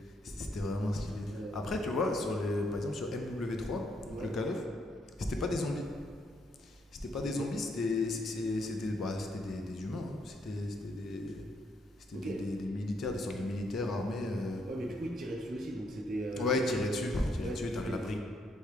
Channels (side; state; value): both; normal; correlation 0.74